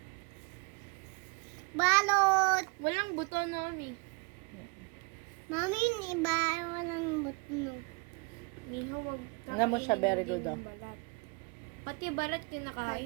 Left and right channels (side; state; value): left; quieter; 30.8 dB